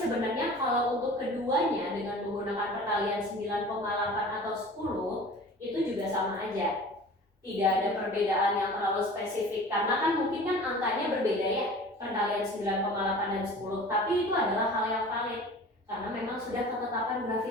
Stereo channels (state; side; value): normal; both; correlation 0.41